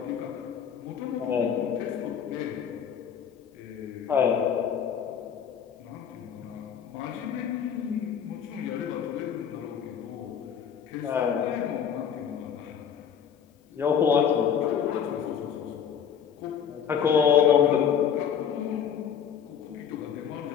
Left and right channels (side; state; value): right; quieter; 8.1 dB